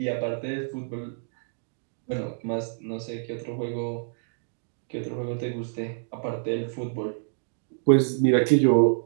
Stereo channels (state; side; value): silent; left; digital silence